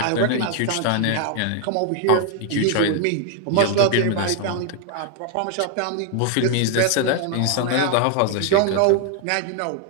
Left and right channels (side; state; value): both; different; correlation 0.00